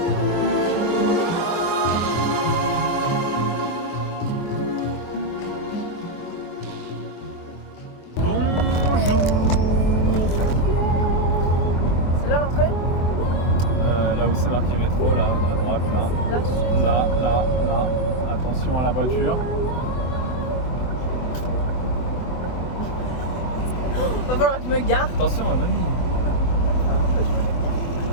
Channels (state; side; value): late; right; 24 ms